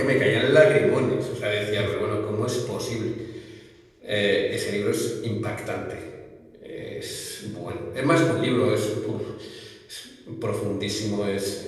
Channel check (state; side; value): identical; both; correlation 1.00